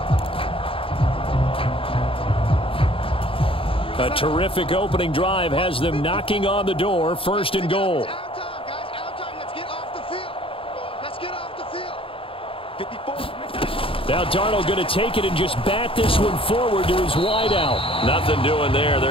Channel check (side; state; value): right; late; 0.26 ms